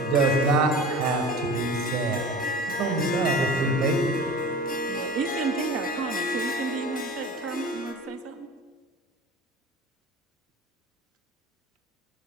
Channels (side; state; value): both; normal; correlation 0.37